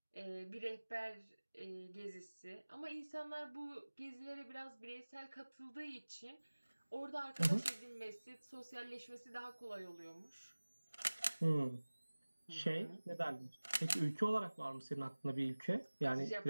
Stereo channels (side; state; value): both; inverted; correlation -1.00